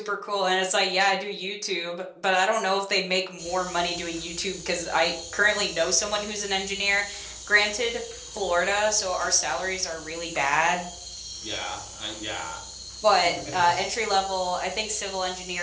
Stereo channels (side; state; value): both; identical; correlation 1.00